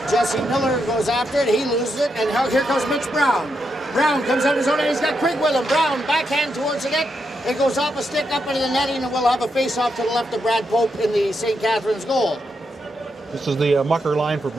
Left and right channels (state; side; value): normal; both; correlation 0.82